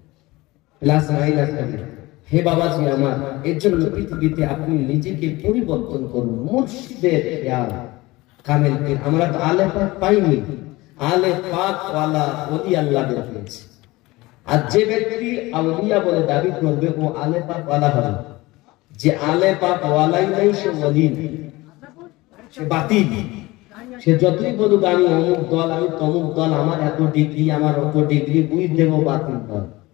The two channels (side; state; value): right; quieter; 20.6 dB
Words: প্লাস মাইনাস থাকবে। হে বাবাজি আমার, এর জন্য পৃথিবীতে আপনি নিজেকে পরিবর্তন করুন। মুর্শিদের খেয়াল কামেল পীর, আমরা তো আলে পাক পাইনি, আলে পাক ওয়ালা ওলি আল্লাহদের পেয়েছে। আর যে ব্যক্তি আউলিয়া বলে দাবি করবে ও আলে পাক ওয়ালা হবে, যে আলে পাক ওয়ালাই নাই সে ওলি, সে বাতিল। সে যতই বলুক আমি অমুক দল, আমি তমুক দল, আমার এত ডিগ্রি, আমার অত ডিগ্রি, বুঝ দেবো বাতিল দল।